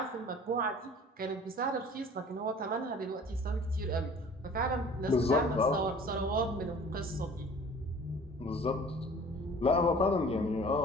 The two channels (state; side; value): normal; both; correlation 0.47